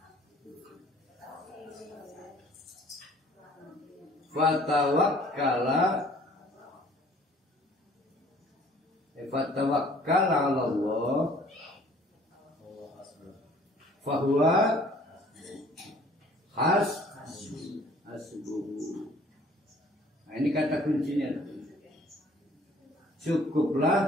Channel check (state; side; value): normal; both; correlation 0.54